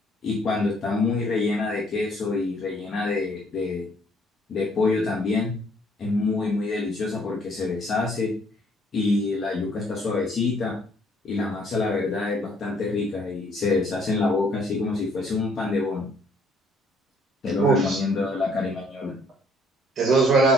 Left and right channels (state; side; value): normal; both; correlation 0.63